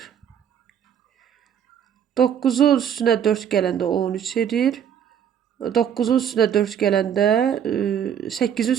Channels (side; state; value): left; quieter; 8.9 dB